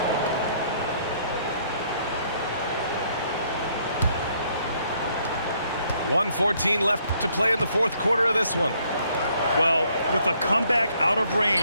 .114 left to play in the fourth quarter of this one. Well, with a comeback out of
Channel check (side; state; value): both; inverted; correlation -0.67